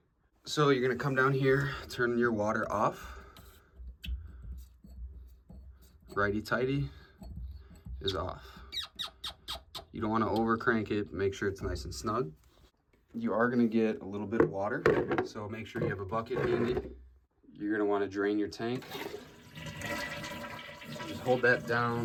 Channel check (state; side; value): identical; both; correlation 1.00